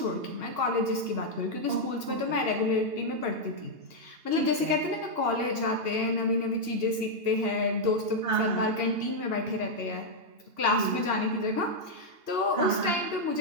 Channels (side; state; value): left; late; 2.8 ms